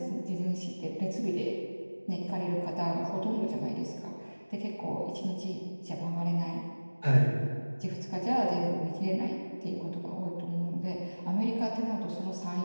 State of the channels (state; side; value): inverted; both; correlation -1.00